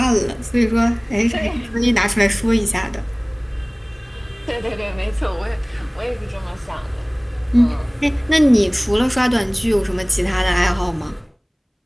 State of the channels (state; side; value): identical; both; correlation 1.00